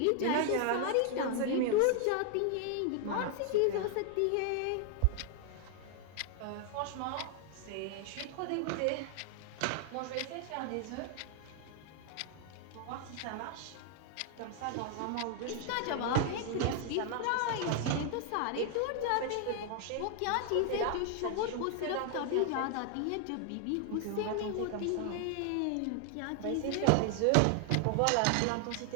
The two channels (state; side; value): different; both; correlation 0.00